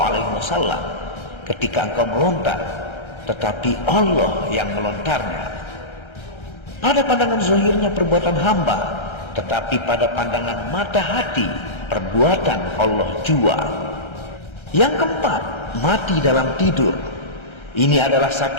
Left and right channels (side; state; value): right; late; 1.3 ms